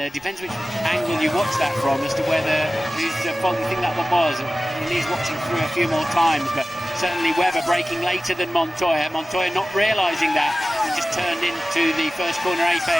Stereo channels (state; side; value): normal; both; correlation 0.96